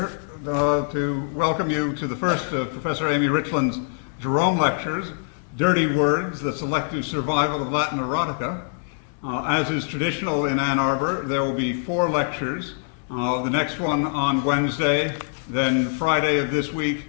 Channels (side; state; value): right; silent; digital silence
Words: to welcome you to the first of Professor Amy Richland's Jerome Lectures, Dirty Words, the Selective Survival of Latin Erotica. As is traditional in Ann Arbor, there will be 4 lectures, the next one on Wednesday, then Friday of this week,